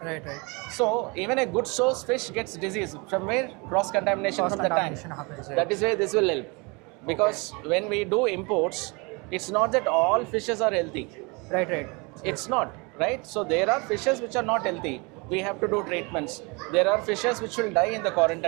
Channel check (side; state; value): left; quieter; 28.9 dB